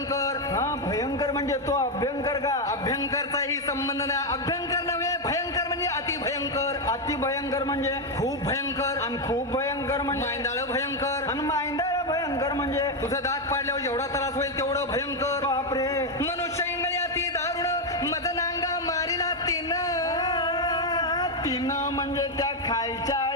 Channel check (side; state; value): both; normal; correlation 0.05